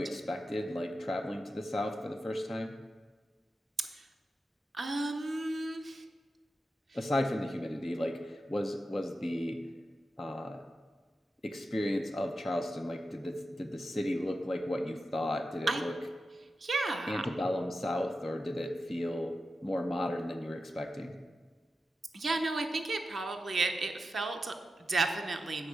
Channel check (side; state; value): both; normal; correlation 0.91